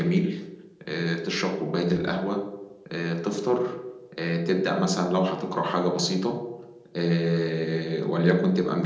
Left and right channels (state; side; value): identical; both; correlation 1.00